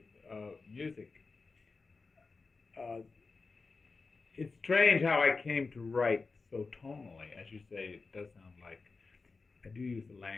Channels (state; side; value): quieter; right; 4.2 dB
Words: music. Uh, it's strange how I came to write so tonally, as you say. It does sound like I do use the